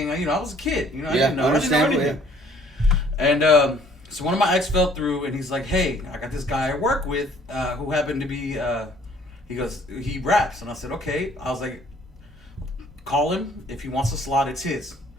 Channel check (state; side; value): normal; both; correlation 0.58